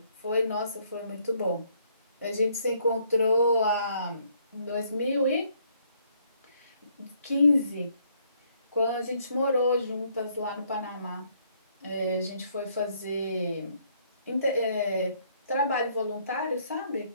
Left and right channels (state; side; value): inverted; both; correlation -0.68